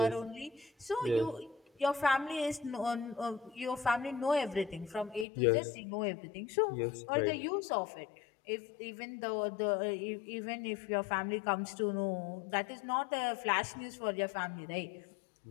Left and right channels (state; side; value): drops out; right; at 5.2 s